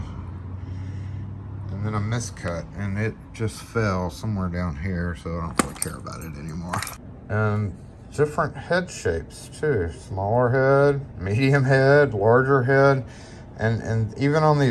then a miscut, and it just fell somewhere down here, so I don't really care about it anymore. And different head shapes too, smaller head, medium head, larger head, and even on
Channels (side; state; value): both; identical; correlation 1.00